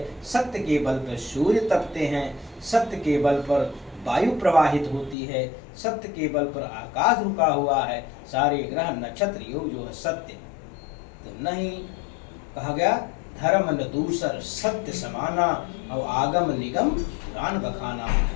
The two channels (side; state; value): right; drops out; at 5.2 s